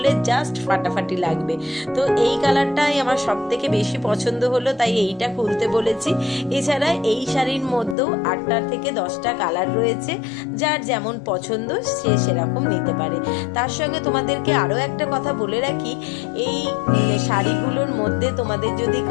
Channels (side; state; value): right; drops out; at 8.0 s